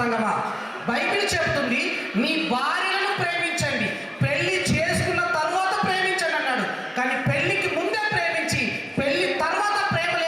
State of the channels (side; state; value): both; identical; correlation 1.00